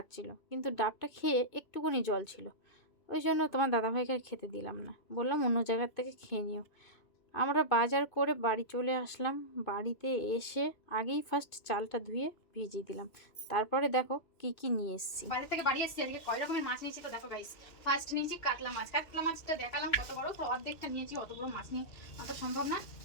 কিন্তু ডাবটা খেয়ে একটুকুনি জল ছিল, ওই জন্য তোমার দাদাভাইকে আর খেতে দিলাম না, বললাম অন্য জায়গার থেকে খেয়ে নিও। আমরা বাজার করে বাড়ি চলে আসলাম। বাড়িতে এসে আগেই ফার্স্ট চালটা ধুয়ে ভিজিয়ে দিলাম, তারপরে দেখো কি কি নিয়ে এসেছি। বাজার থেকে বাড়ি এসেছি, আজকে কয় রকমের মাছ নিয়েছি তো দেখো গাইস। ফার্স্ট নিয়েছি কাতলা মাছ। কাতলা মাছটা দেখালাম কত বড়, তো অর্ধেকটা নিয়েছি, অত বড় মাছ নিয়ে অত সম্ভব না।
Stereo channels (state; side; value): late; right; 2.6 ms